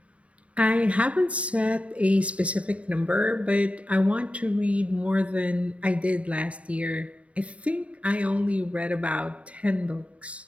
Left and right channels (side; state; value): left; late; 0.064 ms